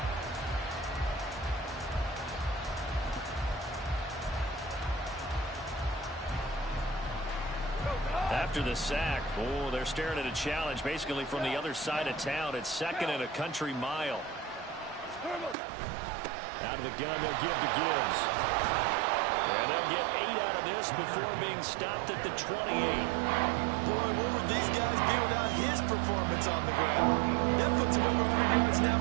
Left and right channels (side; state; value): left; drops out; at 15.6 s